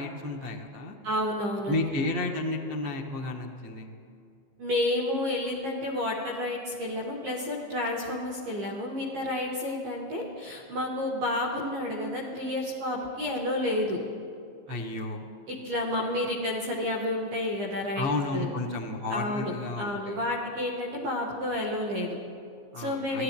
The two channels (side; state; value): left; late; 15 ms